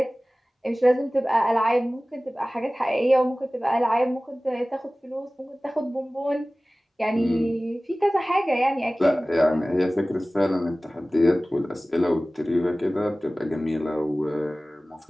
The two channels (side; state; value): both; normal; correlation 0.98